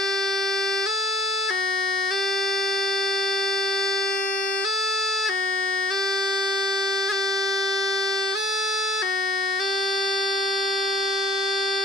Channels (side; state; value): both; normal; correlation 0.56